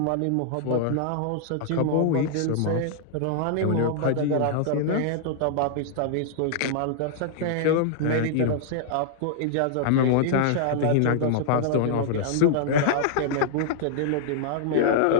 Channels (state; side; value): different; both; correlation -0.01